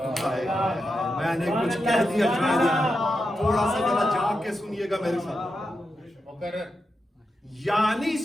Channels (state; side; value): normal; both; correlation 0.88